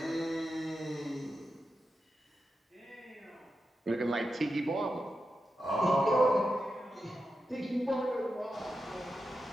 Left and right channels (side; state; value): both; normal; correlation 0.89